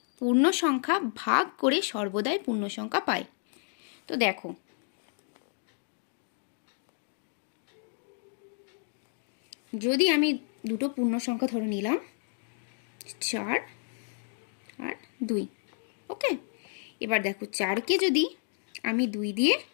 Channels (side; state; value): right; silent; 57 dB below the other